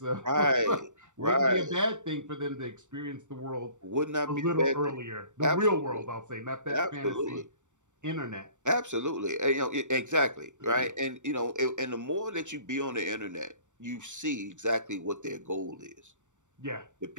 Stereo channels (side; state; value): left; late; 0.85 ms